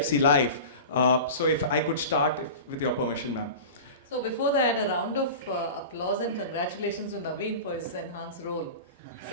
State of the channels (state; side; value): inverted; both; correlation -0.32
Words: Life. So if I could start with your permission, ma'am. So before that, a round of applause and congratulations to Navin for his enhanced role.